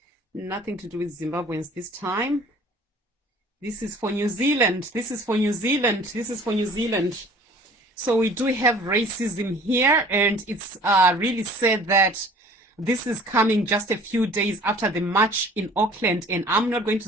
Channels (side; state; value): both; normal; correlation 0.50